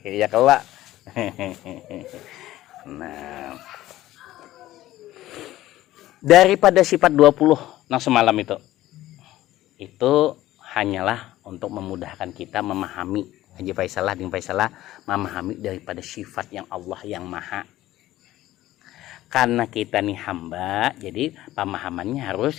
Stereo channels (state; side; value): quieter; right; 15.2 dB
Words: Ya kelak. Nah, daripada sifat 20 yang semalam itu hanyalah untuk memudahkan kita memahami. Haji Faisalah dengan Faisalah memahami daripada sifat yang Allah yang maha. Karena kita nih hamba, jadi pemahamannya harus